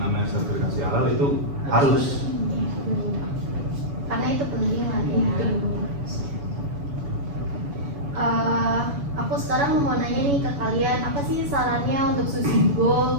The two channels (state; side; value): late; left; 7.0 ms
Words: sertifikasi halal itu harus. Karena itu penting lah ya. Aku sekarang mau nanya nih ke kalian, apa sih sarannya untuk